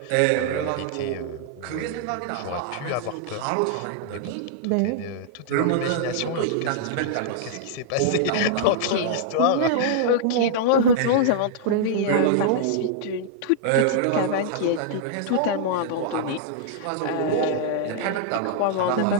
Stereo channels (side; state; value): both; different; correlation -0.01